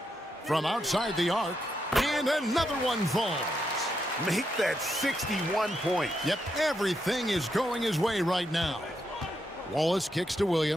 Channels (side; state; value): both; normal; correlation 0.81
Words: From outside the arc. And another one falls. Make that 61 points. Yep, everything is going his way right now. Wallace kicks to